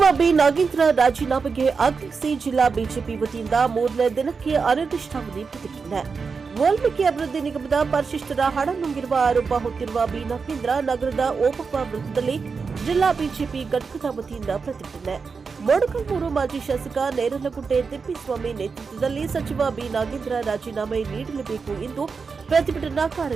ಬಿ ನಾಗೇಂದ್ರ ರಾಜೀನಾಮೆಗೆ ಆಗ್ರಹಿಸಿ ಜಿಲ್ಲಾ ಬಿಜೆಪಿ ವತಿಯಿಂದ ಮೂರನೇ ದಿನಕ್ಕೆ ಅನಿರ್ದಿಷ್ಟಾವಧಿ ಪ್ರತಿಭಟನೆ. ವಾಲ್ಮೀಕಿ ಅಭಿವೃದ್ಧಿ ನಿಗಮದ ಪರಿಶಿಷ್ಟರ ಹಣ ನುಂಗಿರುವ ಆರೋಪ ಹೊತ್ತಿರುವ ಬಿ ನಾಗೇಂದ್ರ ನಗರದ ಓಬವ್ವ ವೃತ್ತದಲ್ಲಿ ಜಿಲ್ಲಾ ಬಿಜೆಪಿ ಘಟಕದ ವತಿಯಿಂದ ಪ್ರತಿಭಟನೆ. ಮೊಳಕಾಲ್ಮೂರು ಮಾಜಿ ಶಾಸಕ ನೇರಲಗುಡ್ಡೆ ತಿಪ್ಪೇಸ್ವಾಮಿ ನೇತೃತ್ವದಲ್ಲಿ ಸಚಿವ ಬಿ ನಾಗೇಂದ್ರ ರಾಜೀನಾಮೆ ನೀಡಲೇಬೇಕು ಎಂದು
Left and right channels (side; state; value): left; quieter; 5.1 dB